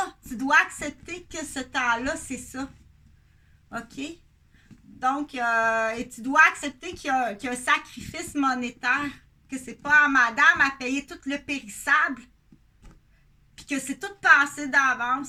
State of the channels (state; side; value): identical; both; correlation 1.00